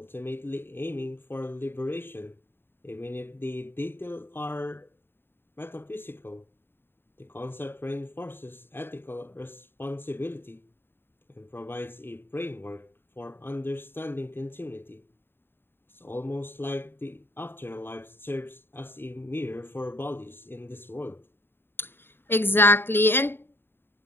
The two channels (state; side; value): late; right; 0.10 ms